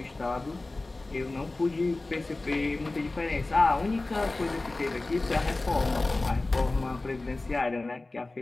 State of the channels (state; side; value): quieter; right; 3.1 dB